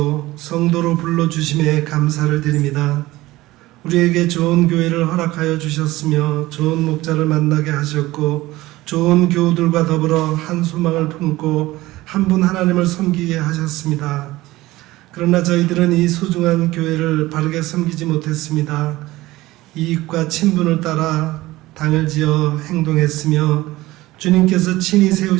성도로 불러주심에 감사를 드립니다. 우리에게 좋은 교회를 허락하여 주셨으며 좋은 목자를 만나게 하셨고 좋은 교우들과 더불어 한 소망을 품고 한 분 하나님을 섬기게 하셨습니다. 그러나 저희들은 이 소중한 교회를 바르게 섬기지 못했습니다. 이익과 친분을 따라 당을 지어 행동했으며 주님께서 친히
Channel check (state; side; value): quieter; left; 18.2 dB